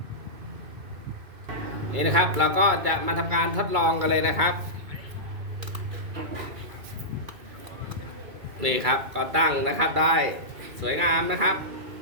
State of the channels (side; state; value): left; late; 2.3 ms